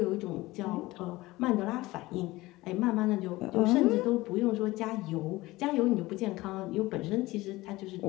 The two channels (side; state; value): right; quieter; 19.4 dB